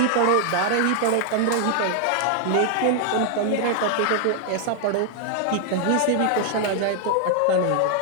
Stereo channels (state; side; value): different; both; correlation 0.00